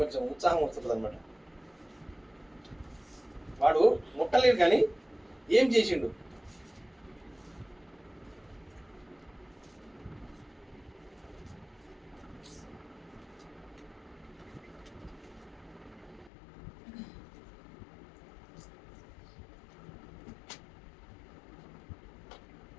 ఉత్సాహం వస్తుంది అనమాట. వాడు ముట్టలేడు కానీ ఏం చేసిండు?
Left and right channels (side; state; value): right; drops out; at 16.3 s